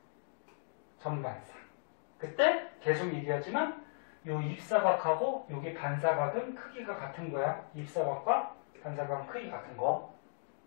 전반사. 그때 계속 얘기하지만 요 입사각하고 여기 반사각은 크기가 같은 거야. 입사각과 반사각은 크기 같은 거.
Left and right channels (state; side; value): silent; right; digital silence